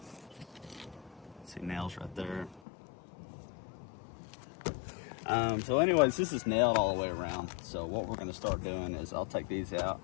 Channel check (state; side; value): drops out; right; at 2.6 s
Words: See nails right there. So anyways, this is nailed all the way around. So what we're gonna start doing is I'll take these out